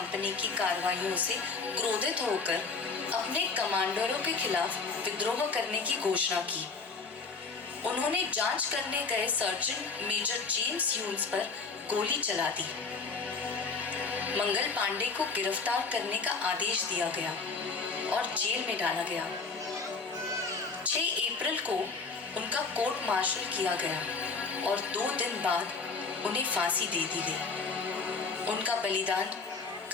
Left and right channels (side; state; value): right; quieter; 4.5 dB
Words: की कार्रवाइयों से क्रोधित होकर अपने कमांडरों के खिलाफ विद्रोह करने की घोषणा की। उन्होंने जांच करने गए सर्जन मेजर जेम्स ह्यूज पर गोली चला दी। मंगल पांडे को गिरफ्तार करने का आदेश दिया गया और जेल में डाला गया। 6 अप्रैल को उनका कोर्ट मार्शल किया गया और 2 दिन बाद उन्हें फांसी दे दी गई। उनका बलिदान